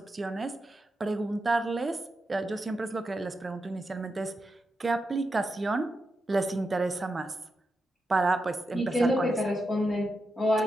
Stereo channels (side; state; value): both; normal; correlation 0.87